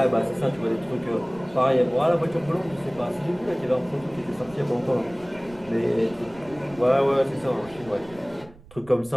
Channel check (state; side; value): noise; right; rumble, 22 dB below the sound